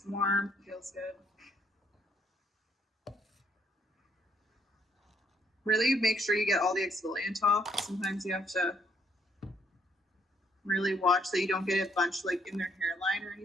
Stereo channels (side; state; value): both; normal; correlation 0.69